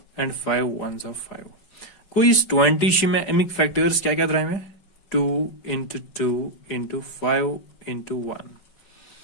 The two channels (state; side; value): late; right; 5.3 ms